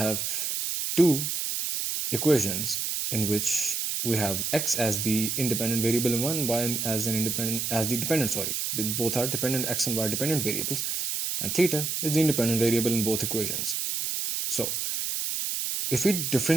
two equations in which we have x as the independent variable in one, y as the dependent. Both are dependent, x and y dependent variables, and theta is the independent variable in both equations. So, if we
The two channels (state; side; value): noise; right; hiss, 1 dB below the sound